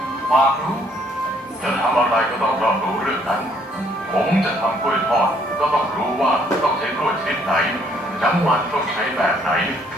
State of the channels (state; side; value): normal; both; correlation 0.65